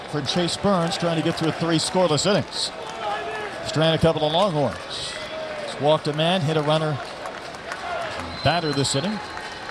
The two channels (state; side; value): identical; both; correlation 1.00